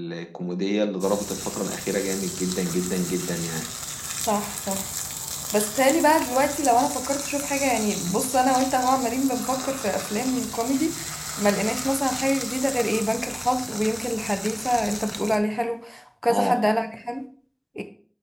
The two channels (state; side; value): identical; both; correlation 1.00